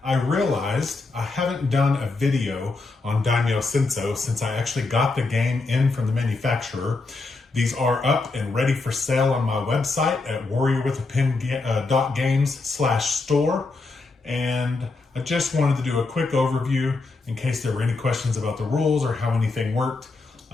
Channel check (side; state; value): right; quieter; 3.6 dB